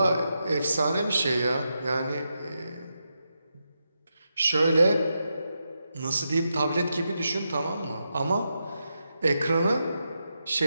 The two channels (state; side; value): inverted; both; correlation -0.86